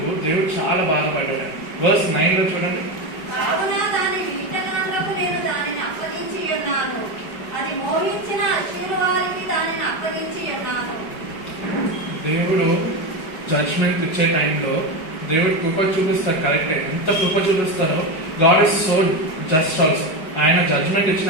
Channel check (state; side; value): late; right; 5.4 ms